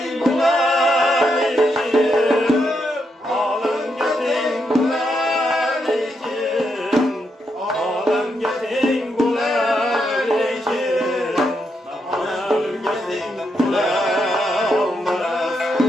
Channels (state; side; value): normal; both; correlation 0.81